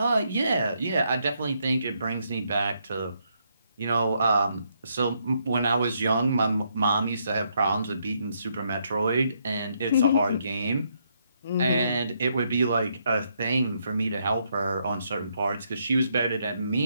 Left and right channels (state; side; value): inverted; both; correlation -0.75